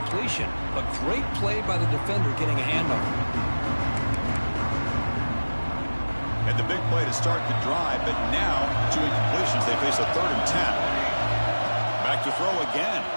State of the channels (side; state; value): both; inverted; correlation -1.00